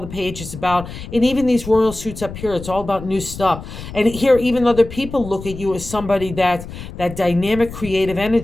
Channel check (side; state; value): left; noise; rumble, 12 dB below the sound